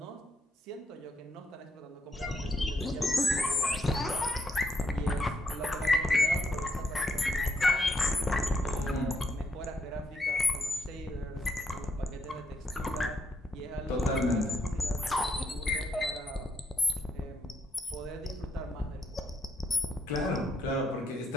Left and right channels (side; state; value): both; normal; correlation 0.77